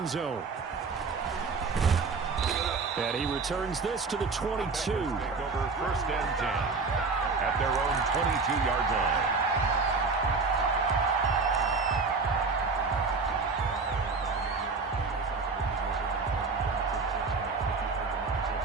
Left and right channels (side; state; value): left; quieter; 4.4 dB